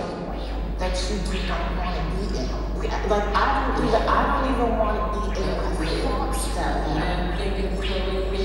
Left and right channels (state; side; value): identical; both; correlation 1.00